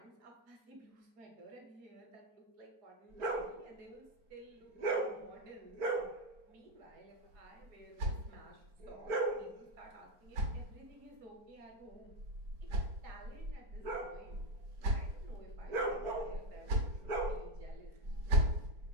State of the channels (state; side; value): late; left; 4.3 ms